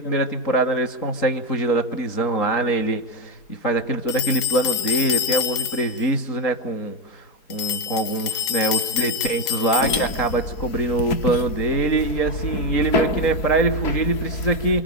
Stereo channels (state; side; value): late; right; 4.2 ms